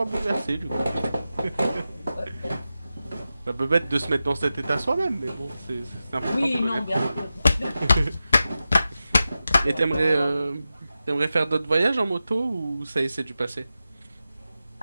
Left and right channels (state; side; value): inverted; both; correlation -0.92